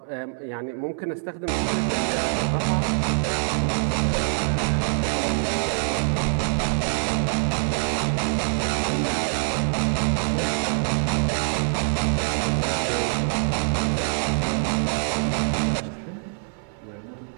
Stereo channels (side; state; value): left; silent; 62 dB below the other